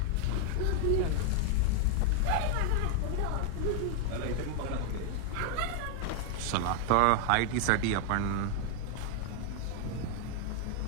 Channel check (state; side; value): different; both; correlation 0.00